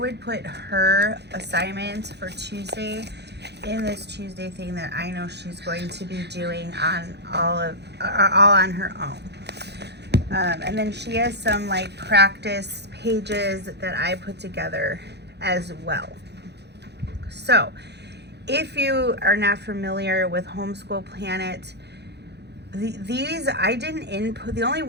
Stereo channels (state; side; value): late; left; 0.49 ms